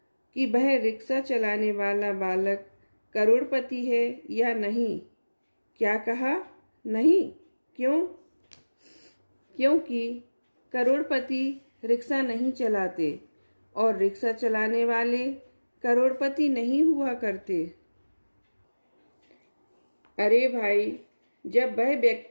कि वह रिक्शा चलाने वाला बालक करोड़पति है या नहीं? क्या कहा? नहीं। क्यों? क्योंकि करोड़पति रिक्शा नहीं चलाते और रिक्शा चलाने वाले करोड़पति नहीं हुआ करते। अरे भाई, जब वह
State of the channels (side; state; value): both; inverted; correlation -1.00